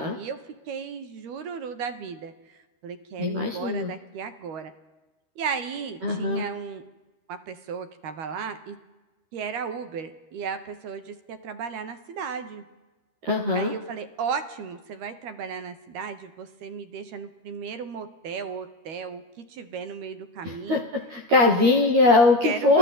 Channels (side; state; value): left; late; 13 ms